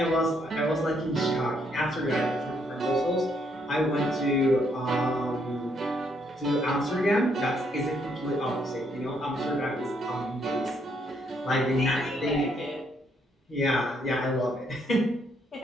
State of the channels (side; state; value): both; normal; correlation 0.72